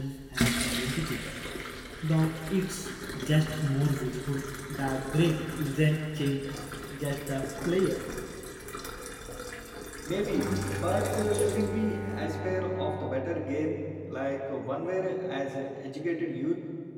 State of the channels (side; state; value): both; identical; correlation 1.00